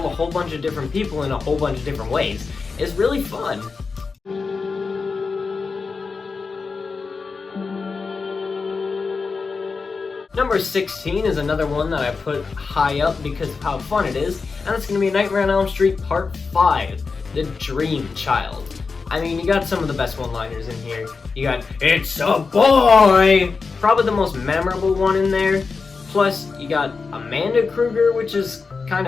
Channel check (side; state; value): right; quieter; 4.7 dB